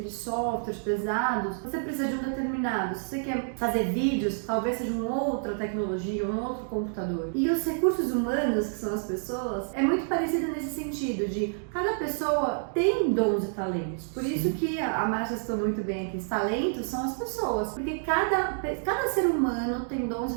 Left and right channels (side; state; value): left; silent; digital silence